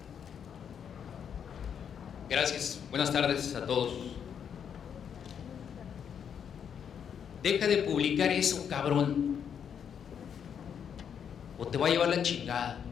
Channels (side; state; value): right; quieter; 7.9 dB